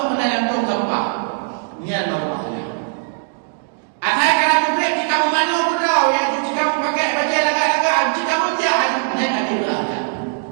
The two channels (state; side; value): silent; left; digital silence